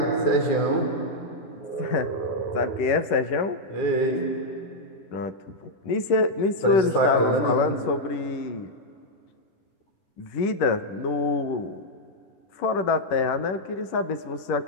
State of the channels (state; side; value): late; right; 11 ms